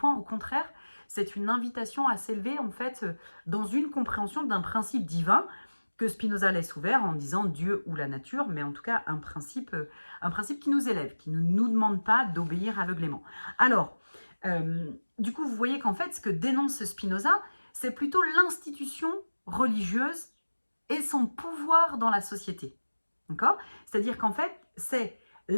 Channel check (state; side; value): inverted; both; correlation -1.00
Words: au contraire, c'est une invitation à s'élever en fait dans une compréhension d'un principe divin que Spinoza laisse ouvert en disant Dieu ou la nature, mais en tout cas un principe qui nous élève, qui ne nous demande pas d'obéir aveuglément. Alors, du coup, vous voyez qu'en fait, ce que dénonce Spinoza, c'est plutôt l'institution religieuse et son pouvoir dans la société. D'accord ? C'est-à-dire qu'en fait, c'est